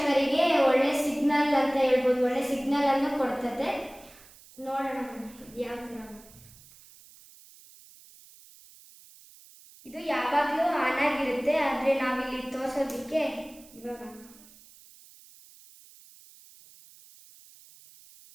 ಒಳ್ಳೆ ಸಿಗ್ನಲ್ ಅಂತ ಹೇಳ್ಬೋದು, ಒಳ್ಳೆ ಸಿಗ್ನಲ್ ಅನ್ನು ಕೊಡ್ತದೆ. ನೋಡೋಣ ಯಾವ ಥರ. ಇದು ಯಾವಾಗಲೂ ಆನ್ ಆಗಿರುತ್ತೆ, ಆದರೆ ನಾವಿಲ್ಲಿ ತೋರಿಸೋದಕ್ಕೆ ಇವಾಗ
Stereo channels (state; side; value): noise; right; hiss, 23 dB below the sound